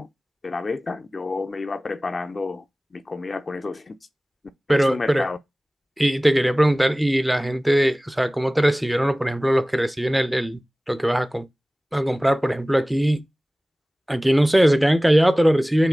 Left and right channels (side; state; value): both; normal; correlation 0.98